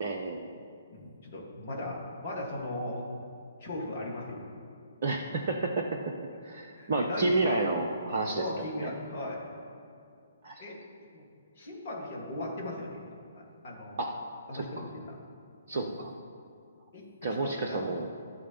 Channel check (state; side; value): inverted; both; correlation -0.65